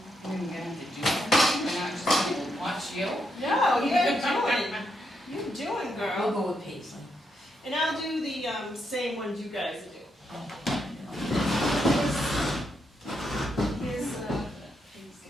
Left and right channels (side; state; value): both; normal; correlation 0.80